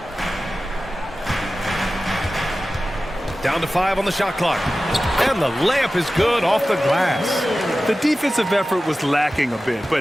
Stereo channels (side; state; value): both; normal; correlation 0.95